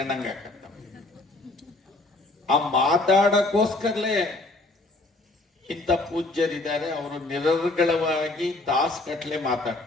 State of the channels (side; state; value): right; quieter; 3.0 dB